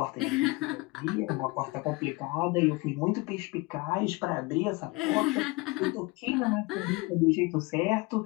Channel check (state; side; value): quieter; right; 24.4 dB